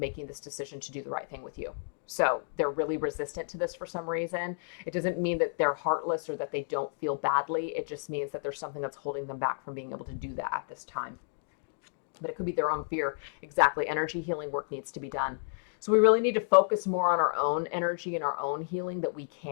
this decision to do the right thing with you. So they're really resistant to this for some reason. It doesn't mean that they're heartless or that they don't feel badly. It just means that there's something that's holding them back from being able to do that at this time. But it could be their own fear. Exactly. Energy healing work needs to be done. So we really need to focus more on our own energy and our own healing that we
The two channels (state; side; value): silent; right; digital silence